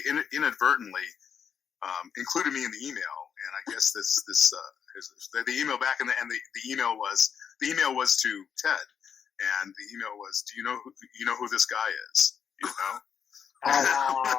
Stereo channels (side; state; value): right; quieter; 7.4 dB